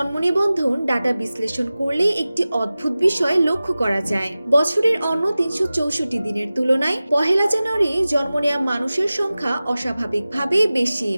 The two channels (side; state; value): both; inverted; correlation -0.97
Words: নিবন্ধন ডাটা বিশ্লেষণ করলে একটি অদ্ভুত বিষয় লক্ষ্য করা যায়। বছরের অন্য ৩৬৪ দিনের তুলনায় পহেলা জানুয়ারি জন্ম নেওয়া মানুষের সংখ্যা অস্বাভাবিকভাবে বেশি।